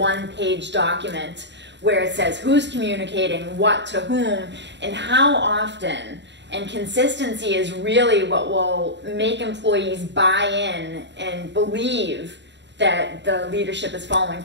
document where it says who's communicating what to whom and how often. And consistency is really what will make employees buy in and believe that the leadership is following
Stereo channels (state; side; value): late; left; 0.52 ms